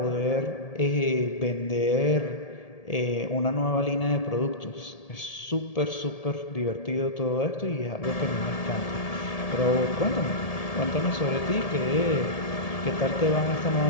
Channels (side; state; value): right; late; 1.7 ms